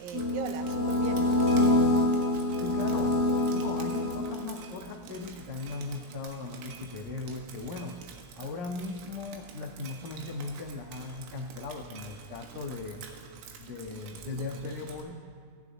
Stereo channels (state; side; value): late; left; 17 ms